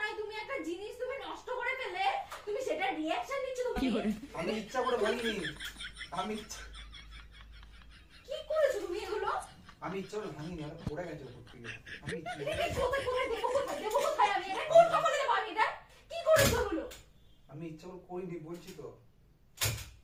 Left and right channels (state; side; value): identical; both; correlation 1.00